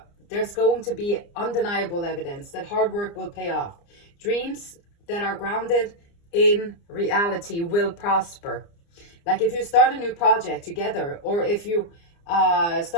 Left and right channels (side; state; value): right; late; 29 ms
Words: there's going to be undeniable evidence that hard work will pay off. Dreams that are grounded in reality will prosper. Like if you start a new project together, or if you